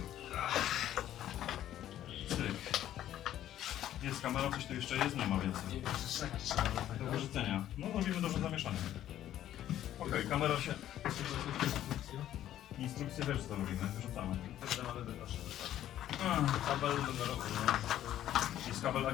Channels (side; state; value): right; quieter; 12.1 dB